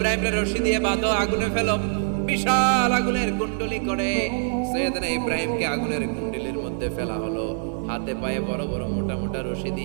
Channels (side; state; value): left; silent; digital silence